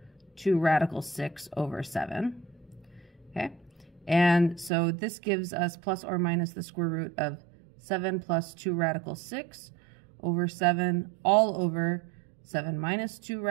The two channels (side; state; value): left; drops out; at 4.7 s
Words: radical 6 over 7. Okay, and so this gives us plus or minus the square root of 7 plus 2 radical 6 over 7 all over 7 minus 2